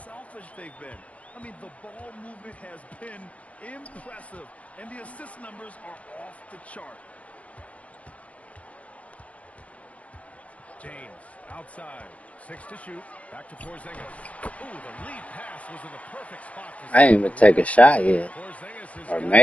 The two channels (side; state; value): right; late; 0.065 ms